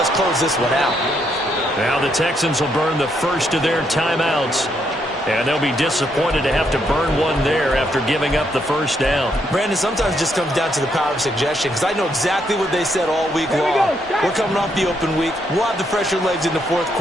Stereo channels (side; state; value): both; normal; correlation 0.75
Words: close this one out. Now the Texans will burn the first of their timeouts. And they'll be disappointed to have to burn one there after giving up the first down. Brandon, sometimes it just comes down to the power of suggestion, because I know exactly what they said all week long. We're coming off the open week. We'll have the fresher legs in the fourth